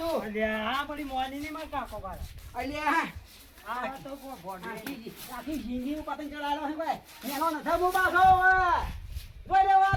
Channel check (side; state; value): both; identical; correlation 1.00